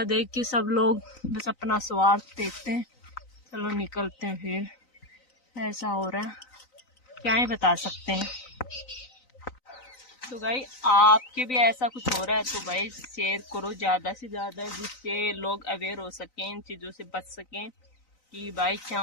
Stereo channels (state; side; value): late; right; 3.9 ms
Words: देख के सब लोग बस अपना स्वार्थ देखते हैं, चलो निकलते हैं। फिर ऐसा हो रहा है, क्या ही बता सकते हैं। तो भाई आपके भी ऐसा कुछ हो रहा है तो भाई शेयर करो ज्यादा से ज्यादा, जिससे लोग अवेयर हो सकें, इन चीजों से बच सकें कि भाई क्या